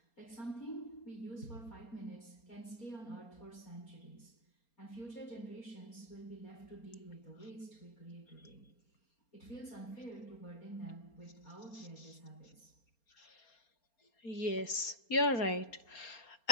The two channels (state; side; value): late; right; 4.3 ms